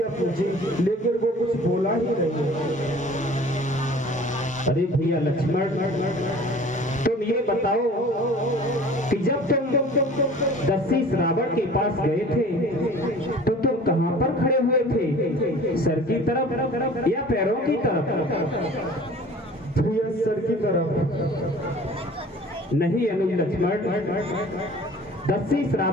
पूछी लेकिन वो कुछ बोला ही नहीं। अरे भैया लक्ष्मण, तुम ये बताओ कि जब तुम दस्यु रावण के पास गए थे तो तुम कहां पर खड़े हुए थे? सर की तरफ या पैरों की तरफ? भैया सर की तरफ। नहीं अनुज लक्ष्मण, दस्यु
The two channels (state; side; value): normal; both; correlation 0.46